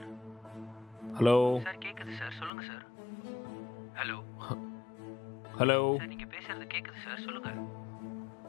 Hello. Sir கேக்குது sir, சொல்லுங்க sir. Hello. Hello. Sir நீங்க பேசுறது கேக்குது சார், சொல்லுங்க.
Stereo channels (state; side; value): drops out; right; at 2.5 s